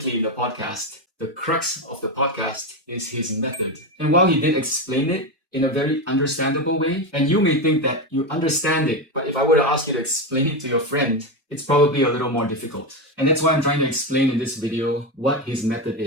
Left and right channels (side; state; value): both; normal; correlation 0.14